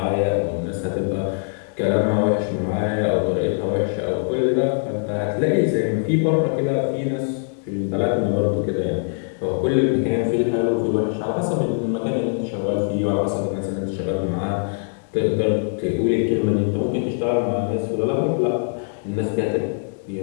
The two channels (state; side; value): silent; right; digital silence